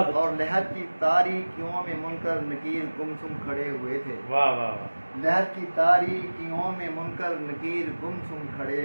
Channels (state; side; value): inverted; both; correlation -1.00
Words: اور لہر کی تاریکیوں میں منکر نکیر گمسم کھڑے ہوئے تھے، واہ واہ واہ لہر کی تاریکیوں میں منکر نکیر گمسم کھڑے